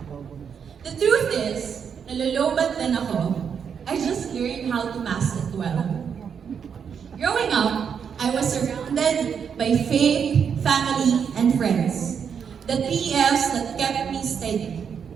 The truth is, nalolobat din ako. I just learned how to mask it well. Growing up, I was surrounded by faith, family, and friends. The three F's that kept me steady.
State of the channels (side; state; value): left; quieter; 7.1 dB